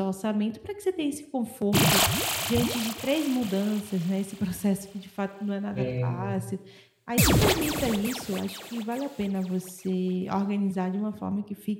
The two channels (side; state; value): both; identical; correlation 1.00